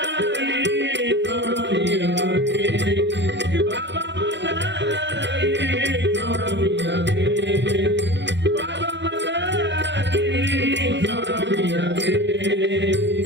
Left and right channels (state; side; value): late; left; 0.52 ms